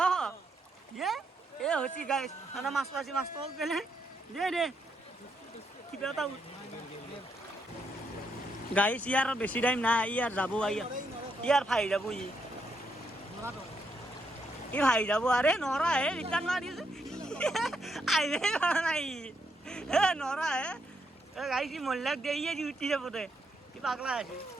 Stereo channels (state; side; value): normal; both; correlation 0.78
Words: এ হৈছে গাই মাছটো আছে মাছটো পেলে দে কিবা এটা গাইছ ইয়াৰ বেছি টাইম নাই ইয়াৰ যাব ইয়াৰ ভাই যাব ই ভাই যাব আৰে নৰা হে ৰিটাৰ্ণ মাৰি আহিলে নাই হে নৰা হে গাইছ মহিলাক দে ইয়ে উঠি যাব দে কি পাগলা আছে